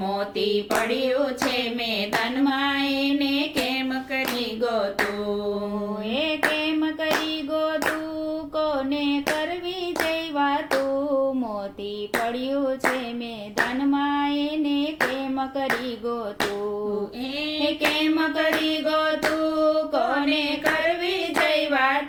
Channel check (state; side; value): identical; both; correlation 1.00